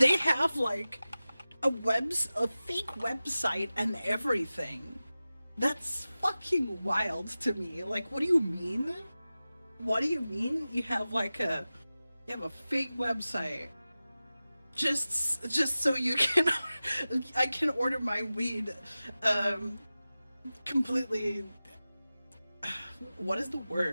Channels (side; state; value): both; inverted; correlation -0.96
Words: have like a fake website and everything. That's fucking wild to me. Like, what do you mean? What do you mean you have a fake website? Just so you can I can order my weed completely, what is the